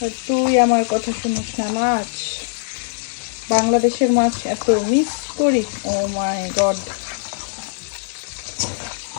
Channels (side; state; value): right; silent; digital silence